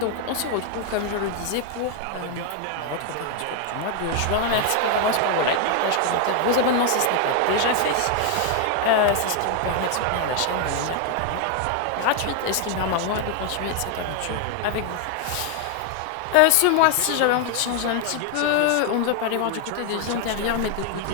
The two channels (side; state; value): both; different; correlation 0.00